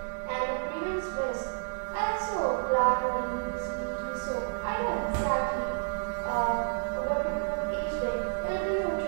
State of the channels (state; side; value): silent; left; digital silence